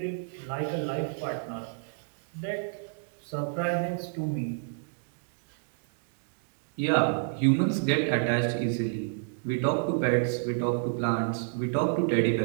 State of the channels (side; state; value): left; silent; digital silence